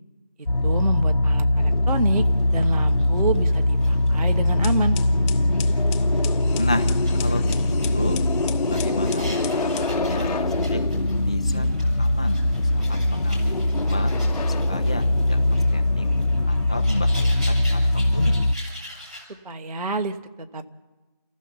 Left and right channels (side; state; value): both; inverted; correlation -0.84